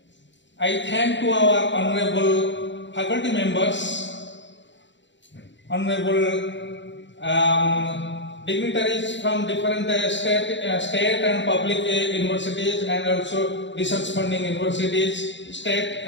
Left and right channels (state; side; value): late; right; 0.53 ms